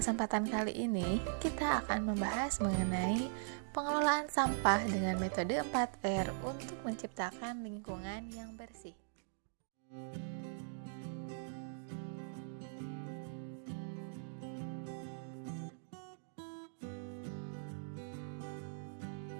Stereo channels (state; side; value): silent; left; digital silence